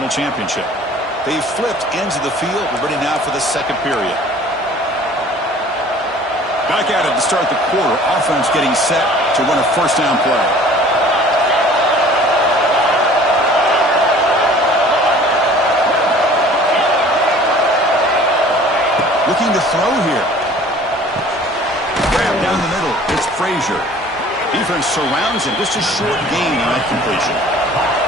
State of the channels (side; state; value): both; normal; correlation 0.49